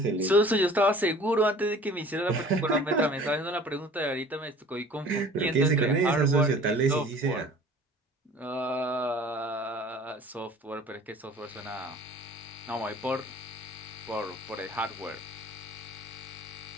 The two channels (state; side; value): normal; both; correlation 0.47